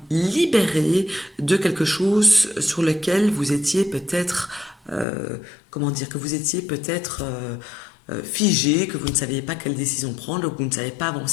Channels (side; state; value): right; drops out; at 5.1 s